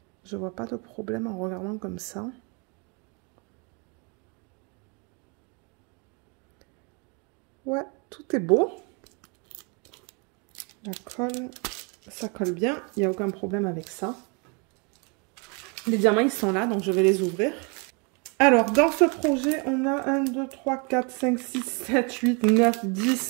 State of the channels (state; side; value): quieter; left; 33.2 dB